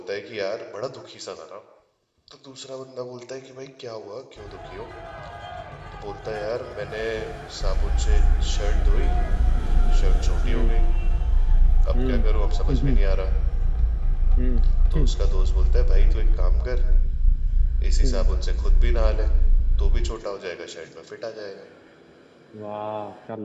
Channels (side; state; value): both; identical; correlation 1.00